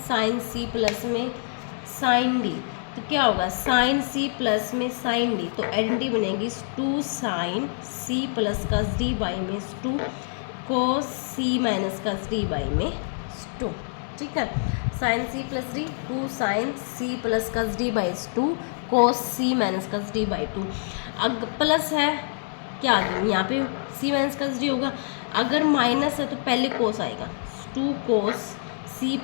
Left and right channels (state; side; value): silent; right; 61 dB below the other